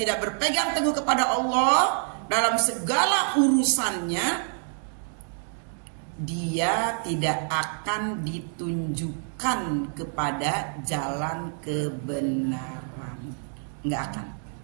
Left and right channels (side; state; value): left; silent; 57 dB below the other